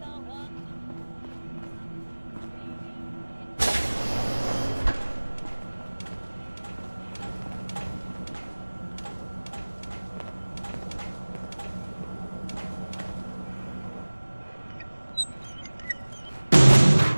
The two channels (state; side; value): inverted; both; correlation -1.00